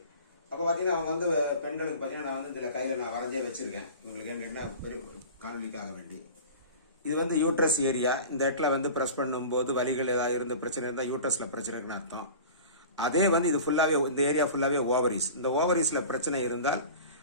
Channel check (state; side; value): inverted; both; correlation -0.37